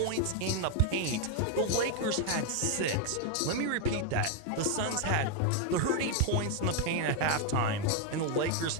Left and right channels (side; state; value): both; different; correlation 0.01